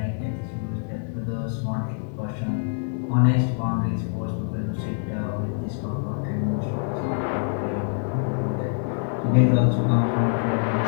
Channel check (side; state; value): right; silent; 62 dB below the other